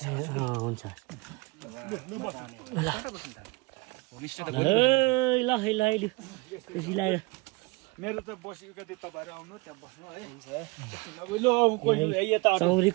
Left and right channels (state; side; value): quieter; left; 24.4 dB